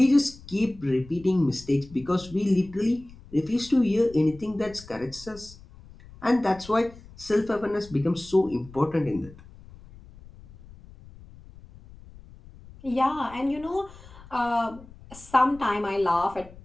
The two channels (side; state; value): left; noise; rumble, 20 dB below the sound